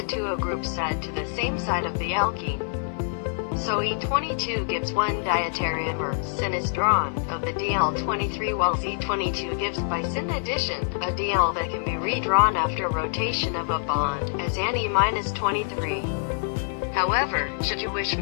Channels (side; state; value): right; silent; digital silence